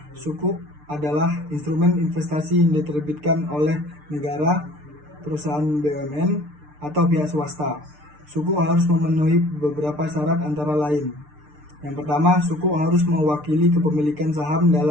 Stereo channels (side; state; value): left; late; 6.7 ms